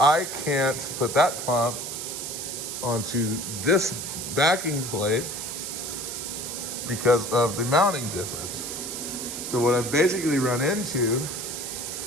can't put that pump onto this backing plate because of the mounting difference. So what I've basically run into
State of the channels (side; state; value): right; noise; hiss, 6 dB below the sound